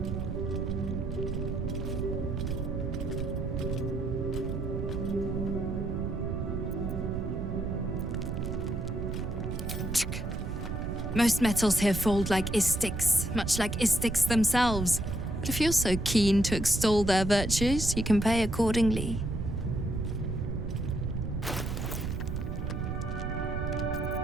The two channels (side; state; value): right; noise; rumble, 4 dB below the sound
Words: Most metals here fold like Istiks, much like Istiks themselves. But if you're so keen to extol their virtues, you can pay accordingly.